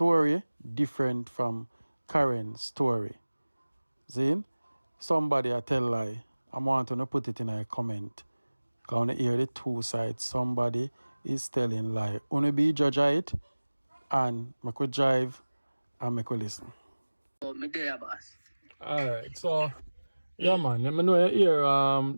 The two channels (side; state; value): both; inverted; correlation -1.00